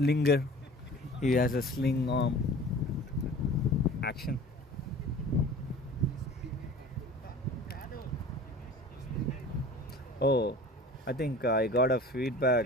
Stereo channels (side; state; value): both; normal; correlation 0.42